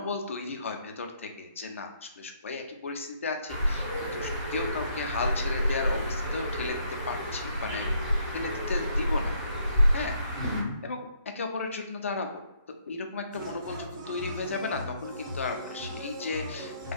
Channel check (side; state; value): both; inverted; correlation -0.69